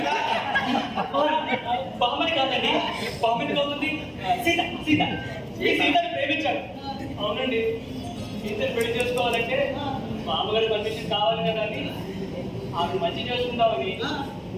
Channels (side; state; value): both; identical; correlation 1.00